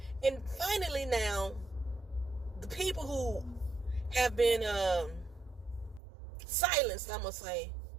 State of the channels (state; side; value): drops out; left; at 6.0 s